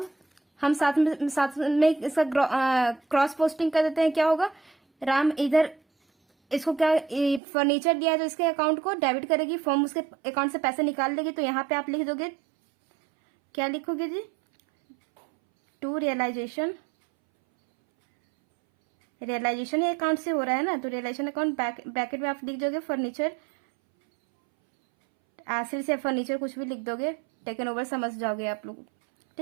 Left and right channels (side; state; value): left; drops out; at 7.4 s